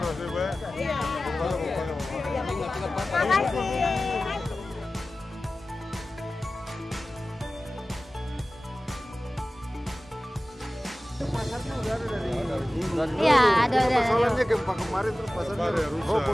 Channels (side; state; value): both; normal; correlation 0.96